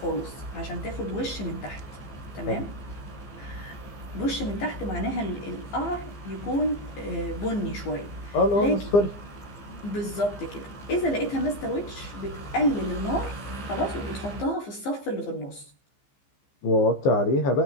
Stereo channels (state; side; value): late; right; 15 ms